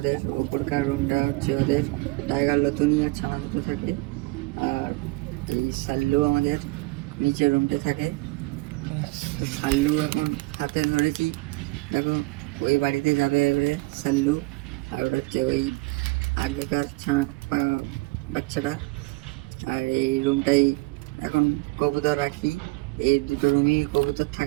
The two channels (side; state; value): left; quieter; 24.0 dB